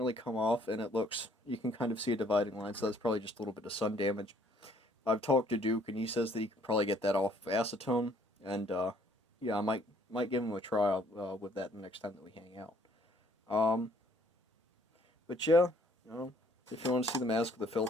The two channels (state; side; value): normal; both; correlation 0.62